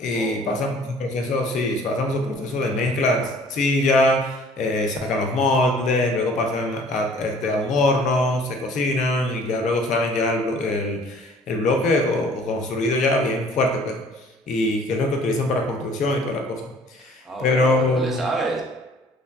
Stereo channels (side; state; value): both; normal; correlation 0.53